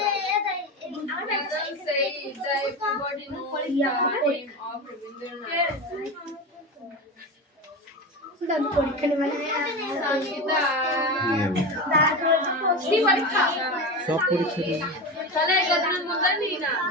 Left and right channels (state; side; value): normal; both; correlation 0.23